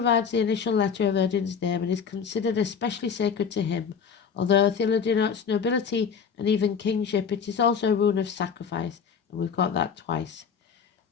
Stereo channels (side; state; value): right; quieter; 6.6 dB